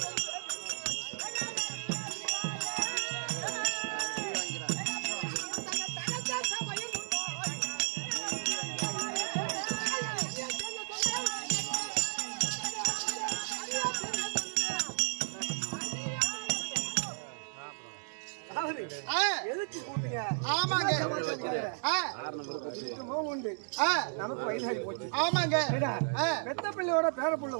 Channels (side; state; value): left; silent; digital silence